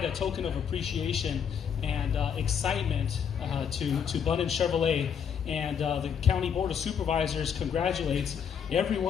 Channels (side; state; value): right; quieter; 7.6 dB